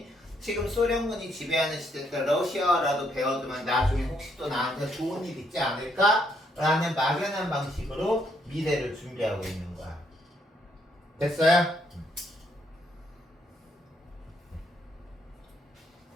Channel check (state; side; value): normal; both; correlation 0.72